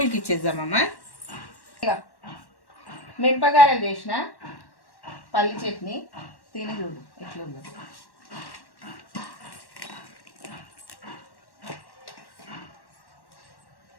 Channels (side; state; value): right; late; 1.1 ms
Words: ఇచ్చేద్దామమ్మా. ఇక మినపగారెలు చేసిన పల్లి చట్నీ తిని చూడు ఎట్లుందో.